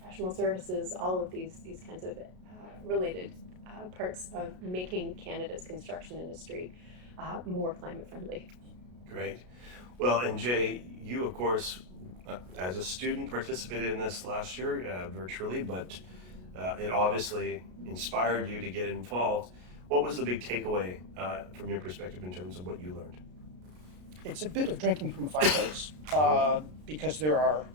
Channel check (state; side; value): late; left; 33 ms